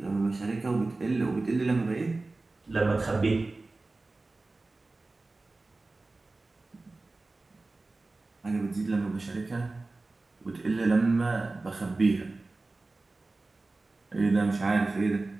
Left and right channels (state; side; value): quieter; left; 3.3 dB